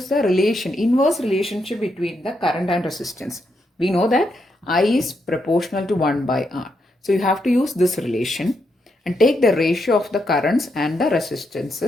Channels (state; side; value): normal; both; correlation 0.81